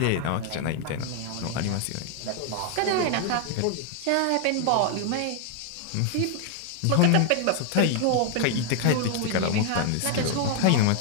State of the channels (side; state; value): both; different; correlation 0.00